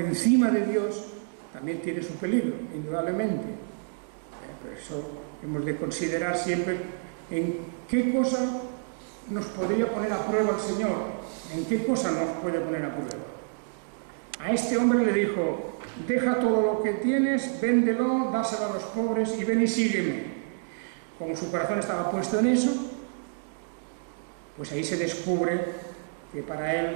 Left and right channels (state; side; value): silent; left; digital silence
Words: de Dios, también tiene su peligro, indudablemente. Por eso hemos de considerar siempre en qué cosa nos podría poner a prueba el Señor, en qué cosa nos puede poner a prueba. A este hombre le dijo: deja todo lo que tienes, véndelo, dáselo a los pobres y ven y sígueme. Como su corazón estaba puesto en eso, pues ahí se descubre que para